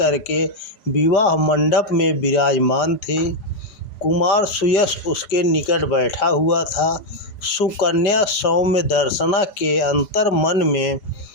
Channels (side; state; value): right; late; 5.0 ms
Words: विवाह मंडप में विराजमान थी। कुमार सुयश उसके निकट बैठा हुआ था। सुकन्या सौम्य दर्शना के अंतर मन में